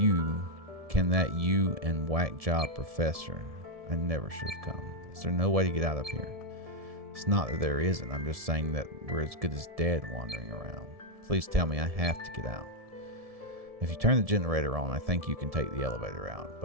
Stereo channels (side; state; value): left; late; 1.7 ms